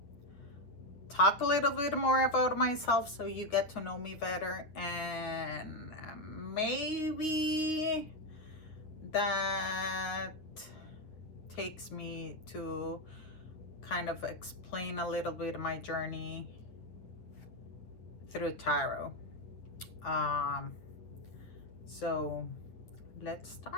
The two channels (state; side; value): late; right; 9.5 ms